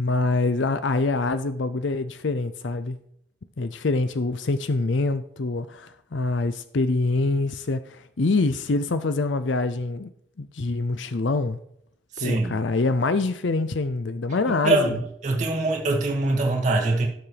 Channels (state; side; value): normal; both; correlation 0.52